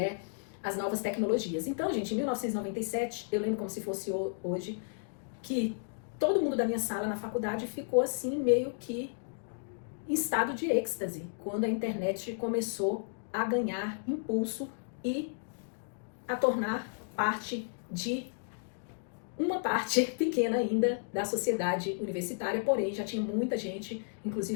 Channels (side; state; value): right; silent; digital silence